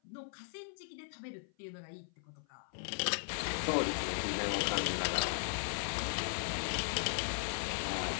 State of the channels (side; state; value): right; silent; 53 dB below the other